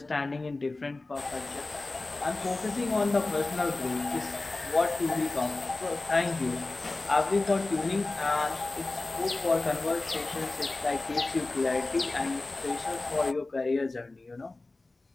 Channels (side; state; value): right; quieter; 3.2 dB